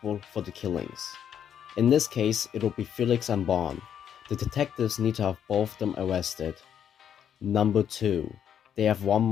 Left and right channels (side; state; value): right; quieter; 9.0 dB